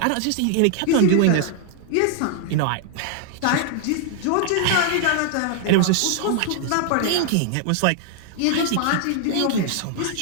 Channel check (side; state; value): both; different; correlation 0.00